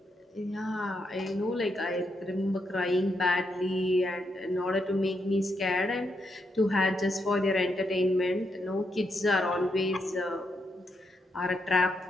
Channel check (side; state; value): both; normal; correlation 0.80